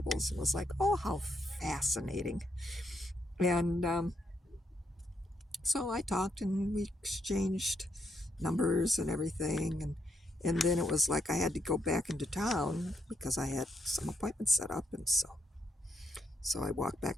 It was like, oh, how fascinating. And so I talked, and we exchanged numbers and everything. And then it was like I had to go back into town because I had some appointments set up, and so I walked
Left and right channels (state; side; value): normal; both; correlation 0.78